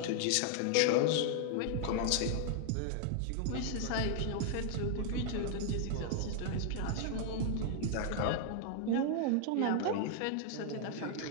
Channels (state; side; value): different; both; correlation 0.00